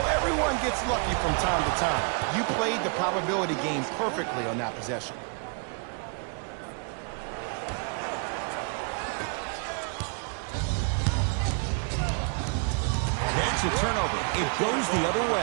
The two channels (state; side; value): quieter; left; 36.9 dB